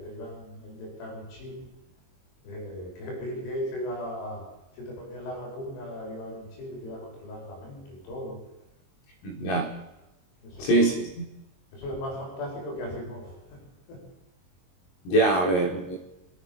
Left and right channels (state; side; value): late; right; 22 ms